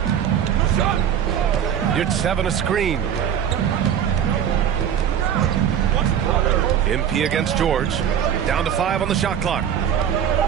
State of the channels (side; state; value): left; quieter; 9.1 dB